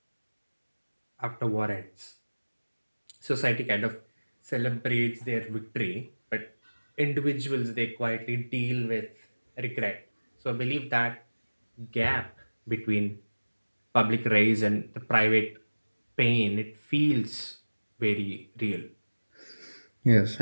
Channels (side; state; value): both; inverted; correlation -1.00